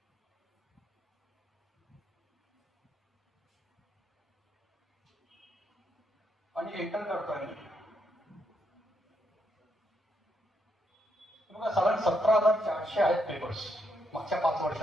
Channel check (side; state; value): both; normal; correlation 0.77